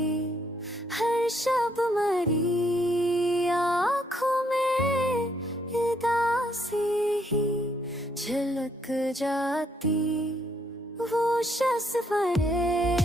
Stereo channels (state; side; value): normal; both; correlation 0.71